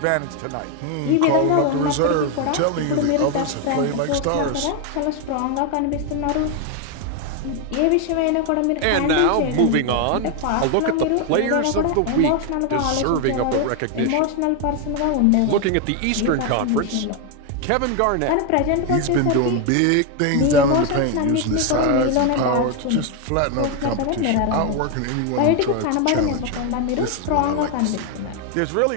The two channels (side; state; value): both; different; correlation 0.01